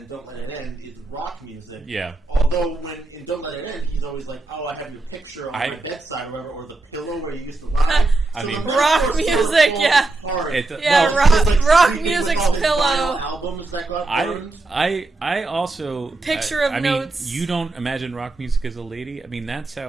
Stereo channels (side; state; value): left; quieter; 3.2 dB